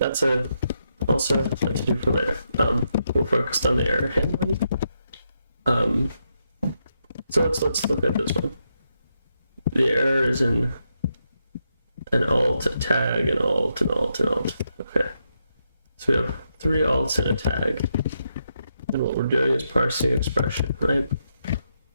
also a to do for later. We're focused on the error handling. So let's look at this one. The error is in an alt, a tag, an alt, an alt, an alt. Okay. So we have 3 alts and a tag. And what we're doing is parsing expression, right?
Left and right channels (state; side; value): inverted; both; correlation -0.82